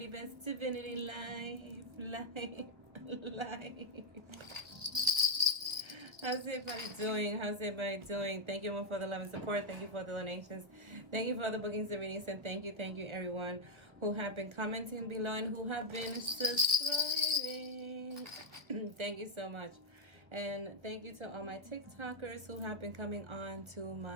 Divinity Live. How's everybody doing? Thank you all for the love and support. Thank you for the donations. Thank you for the bookings and readings. And thank you everyone who have been commenting below and who have been subscribing. Thank you so much. And thank you to all my TikTokers who have been coming on to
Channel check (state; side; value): late; left; 1.1 ms